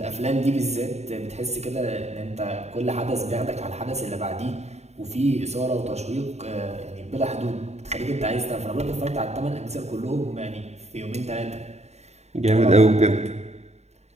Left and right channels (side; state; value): left; late; 0.32 ms